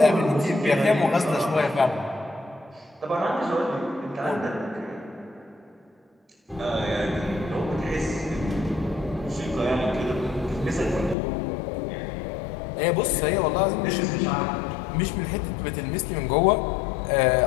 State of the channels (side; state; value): right; drops out; at 11.2 s